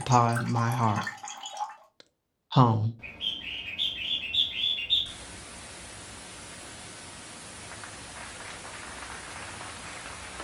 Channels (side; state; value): both; identical; correlation 1.00